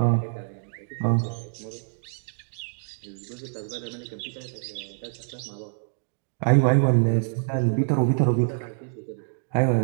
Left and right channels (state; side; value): silent; left; digital silence